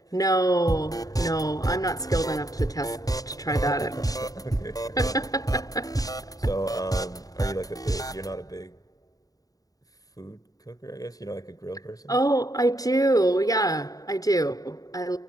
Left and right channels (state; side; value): late; right; 0.18 ms